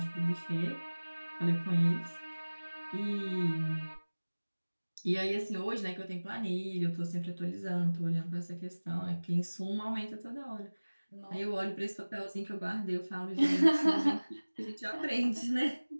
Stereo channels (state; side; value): inverted; both; correlation -1.00